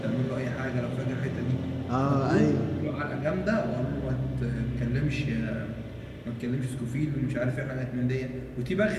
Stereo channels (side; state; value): both; identical; correlation 1.00